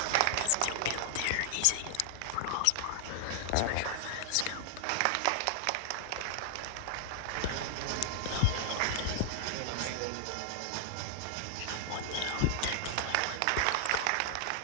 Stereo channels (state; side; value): different; both; correlation -0.01